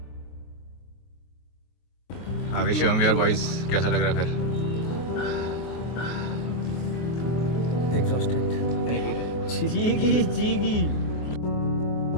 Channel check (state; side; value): late; right; 23 ms